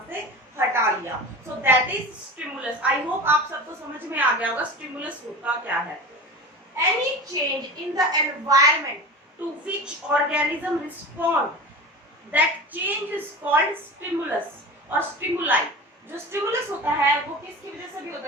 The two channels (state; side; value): normal; both; correlation 0.32